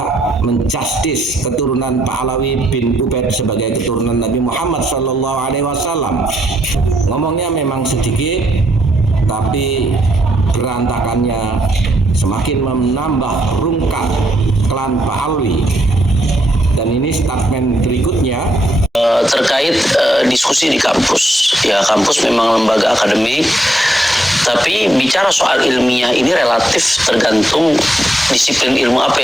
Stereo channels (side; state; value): both; normal; correlation 0.76